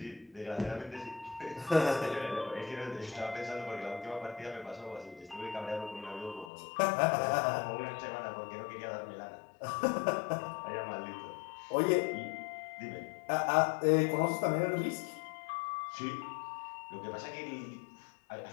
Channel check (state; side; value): drops out; right; at 6.5 s